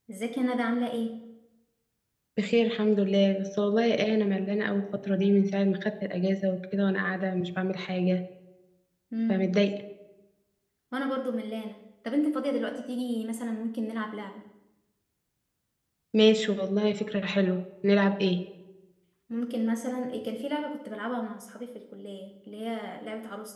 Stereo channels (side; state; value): both; identical; correlation 1.00